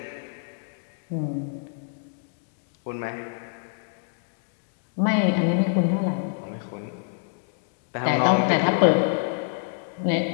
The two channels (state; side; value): silent; right; digital silence